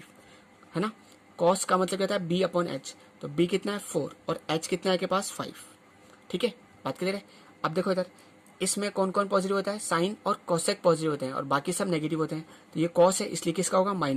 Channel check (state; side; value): identical; both; correlation 1.00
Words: है ना, cos का मतलब क्या होता है, b/h। तो b कितना है 4 और h कितना है के पास 5। ठीक है, बात क्लियर है। अब देखो इधर इसमें कौन कौन पॉजिटिव होता है, साइन और cosec पॉजिटिव होते हैं और बाकी सब नेगेटिव होते हैं। तो ये cos है इसलिए किसका होगा,